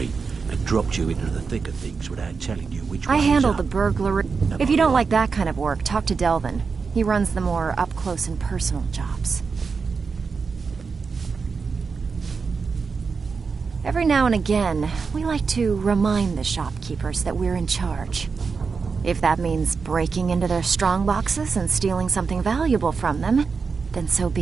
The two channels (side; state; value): left; quieter; 5.1 dB